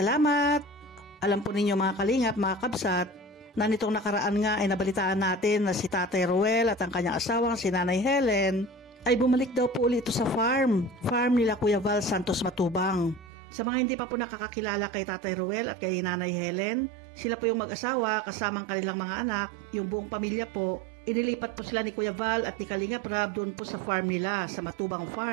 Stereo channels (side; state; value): left; drops out; at 13.2 s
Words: Alam po ninyo mga kalingap, mga kabsat, na nitong nakaraan nga ay nabalitaan natin na si Tatay Ruel at ang kanyang asawang si Nanay Helen ay bumalik daw po ulit ito sa farm nila Kuya Val Santos Matubang. Sa mga hindi pa po nakakakilala kay Tatay Ruel at kay Nanay Helen, sila po yung mag-asawa kasamang kanilang mga anak, yung buong pamilya po. Inilipat po sila ni Kuya Val at ni Kalingap Rab doon po sa farm nila, sa Matubang